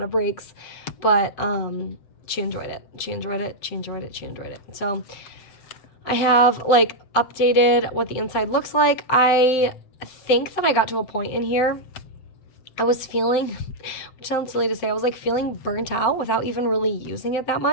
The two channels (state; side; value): late; right; 7.8 ms